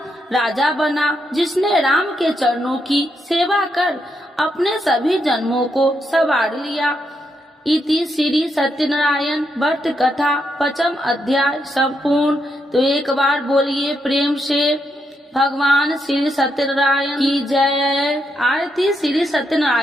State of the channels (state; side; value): normal; both; correlation 0.80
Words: राजा बना, जिसने राम के चरणों की सेवा कर अपने सभी जन्मों को संवार लिया। इति श्री सत्यनारायण व्रत कथा 5th अध्याय संपूर्ण। तो एक बार बोलिए प्रेम से भगवान श्री सत्यनारायण की जय। आरती श्री